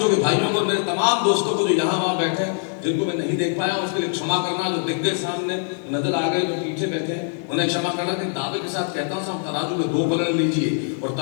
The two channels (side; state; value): right; silent; 61 dB below the other